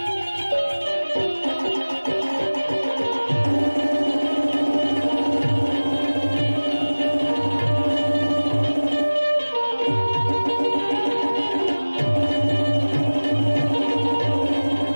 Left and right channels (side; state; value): both; inverted; correlation -1.00